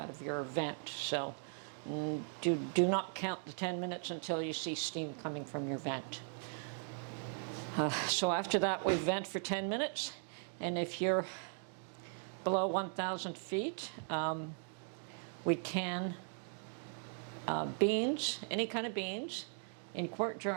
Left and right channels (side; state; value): left; silent; 52 dB below the other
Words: of your vent. So do not count the 10 minutes until you see steam coming from your vent. So after that, we vent for 10 minutes. And if you're below 1,000 feet, we can beans, any kind of beans, in quart